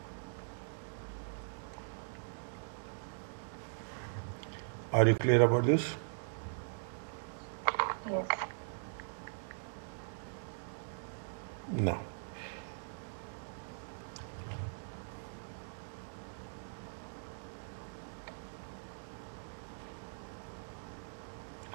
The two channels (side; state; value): left; silent; digital silence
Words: Are you clear about this? Yes. No.